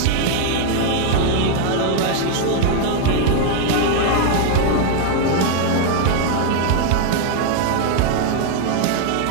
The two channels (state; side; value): different; both; correlation 0.00